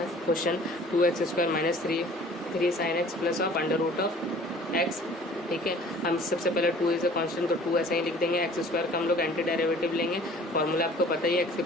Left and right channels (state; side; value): normal; both; correlation 0.50